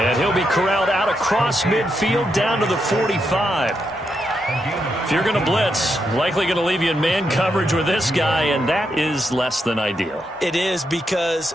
he'll be corralled out across midfield down to the 45. If you're going to blitz, likely going to leave you in man coverage with this guy, and that is less than ideal. It is, because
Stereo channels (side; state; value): both; normal; correlation 0.82